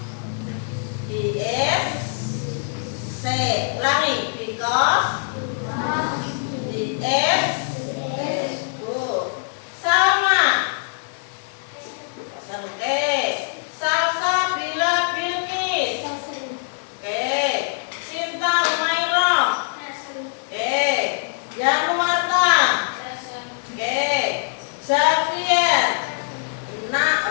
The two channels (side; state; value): right; silent; digital silence